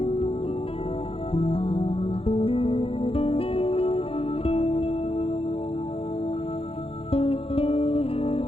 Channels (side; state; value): right; late; 0.27 ms